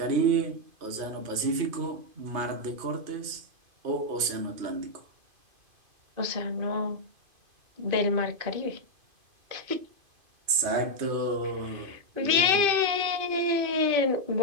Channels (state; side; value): late; left; 2.5 ms